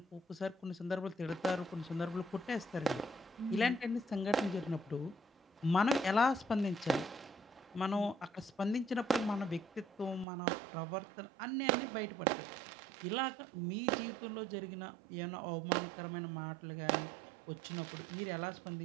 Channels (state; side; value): drops out; left; at 10.2 s